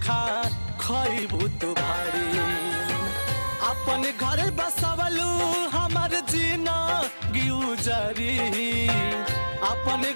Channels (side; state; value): both; inverted; correlation -1.00